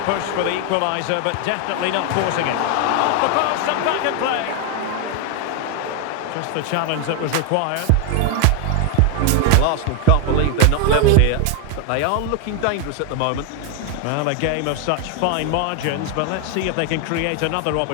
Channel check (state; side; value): different; both; correlation 0.01